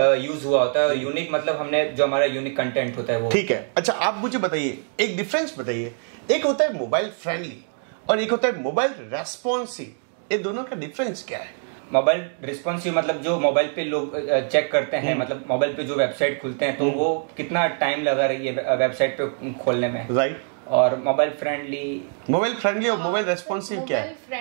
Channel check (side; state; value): left; silent; 57 dB below the other